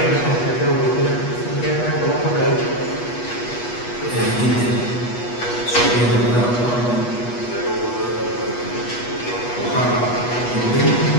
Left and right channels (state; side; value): late; right; 8.3 ms